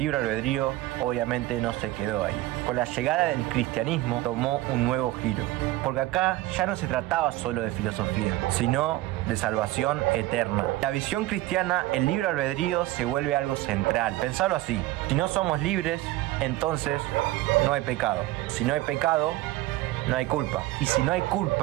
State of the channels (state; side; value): quieter; left; 17.1 dB